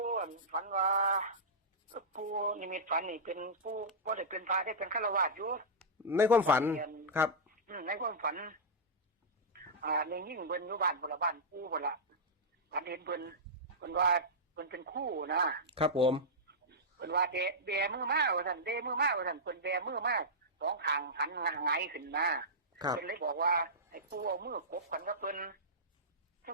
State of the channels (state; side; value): normal; both; correlation -0.11